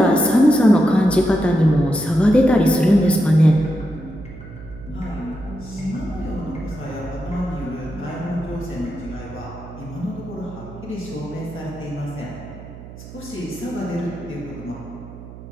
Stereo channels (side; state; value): right; noise; hum, 15 dB below the sound